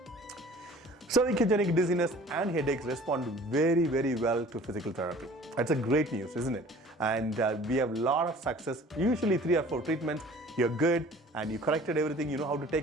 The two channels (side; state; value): both; normal; correlation 0.48